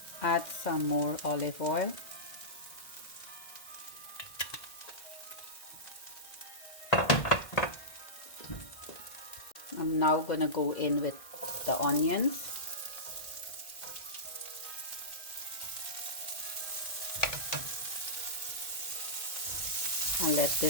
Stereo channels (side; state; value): right; late; 1.6 ms